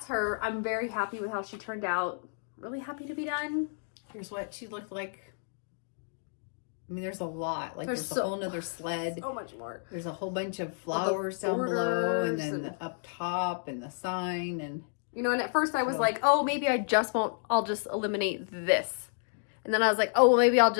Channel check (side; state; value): right; silent; digital silence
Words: her. I'm very happy with how she turned out. Really happy to be done. Here's what she looked like. I mean, there's a lot. Like, there's a so, whole nother sled. So much more. There's a whole bunch of flowers down below, and then up top, and the sign, and... You know, and at first I was like, oh, maybe I'll just eliminate this. And then I was like, oh, well, maybe I'll